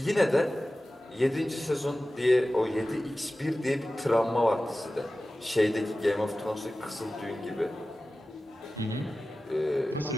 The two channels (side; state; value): both; normal; correlation 0.96